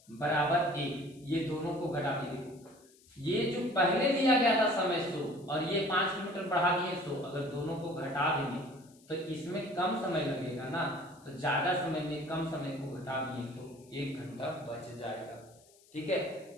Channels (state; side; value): noise; left; hiss, 28 dB below the sound